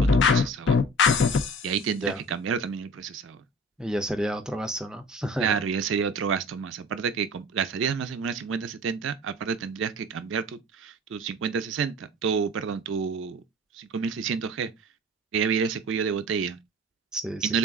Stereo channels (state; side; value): normal; both; correlation 0.41